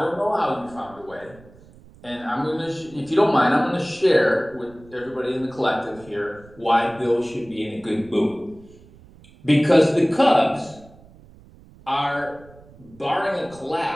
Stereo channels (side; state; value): right; noise; rumble, 24 dB below the sound